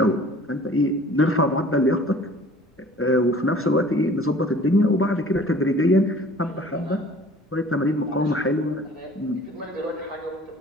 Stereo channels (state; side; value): normal; both; correlation 0.49